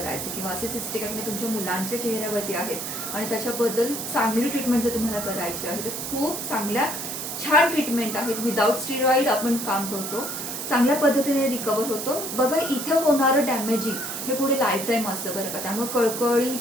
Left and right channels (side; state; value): right; noise; hiss, 5 dB below the sound